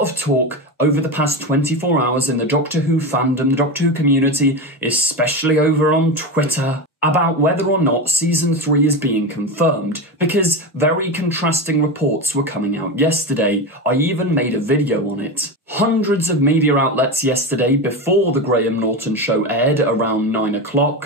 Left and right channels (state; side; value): normal; both; correlation 0.19